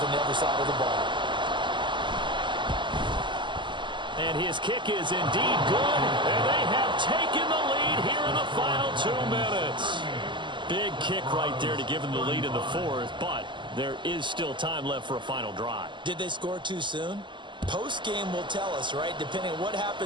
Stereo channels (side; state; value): left; late; 0.23 ms